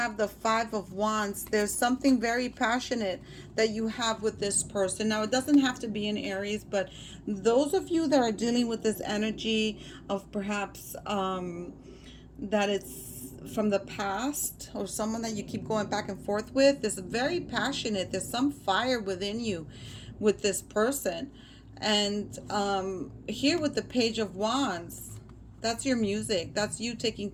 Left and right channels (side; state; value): both; identical; correlation 1.00